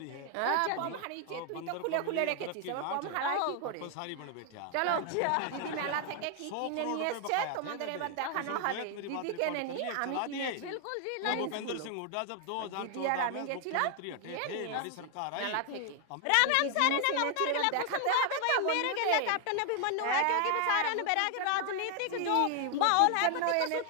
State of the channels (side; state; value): both; different; correlation 0.00